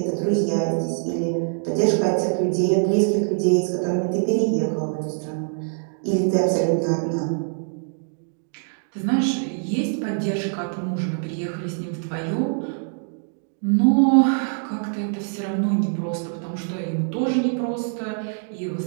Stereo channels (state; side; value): silent; left; digital silence